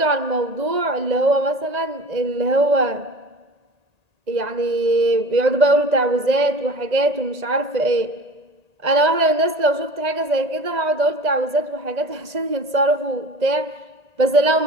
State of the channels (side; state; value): left; late; 1.8 ms